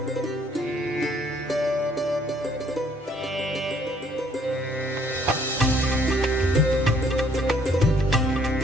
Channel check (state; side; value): normal; both; correlation 0.63